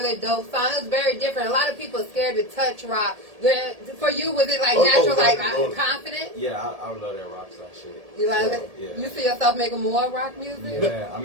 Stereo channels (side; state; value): left; late; 1.7 ms